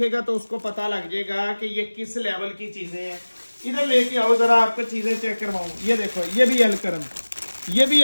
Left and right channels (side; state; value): both; inverted; correlation -1.00